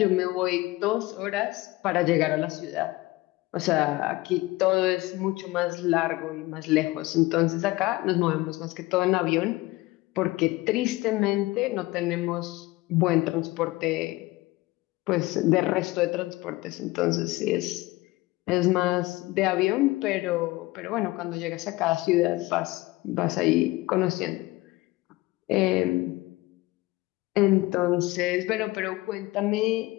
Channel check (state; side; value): quieter; right; 20.0 dB